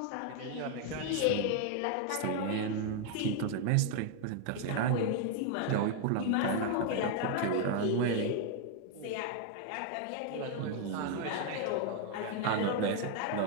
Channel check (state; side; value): different; both; correlation 0.00